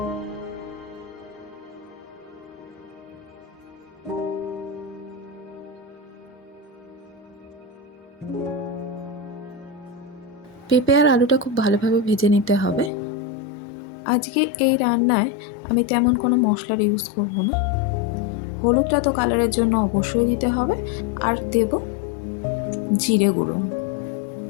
পেঁপে আর আলুটা খুব ভালোভাবে ভেজে নিতে হবে। আজকে এই রান্নায় আমি তেমন কোনো মশলার ইউজ করব না। হলুদটা তো কালারের জন্য অবশ্যই দিতে হবে, আর দেব জিরে গুঁড়ো।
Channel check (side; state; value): right; drops out; at 12.9 s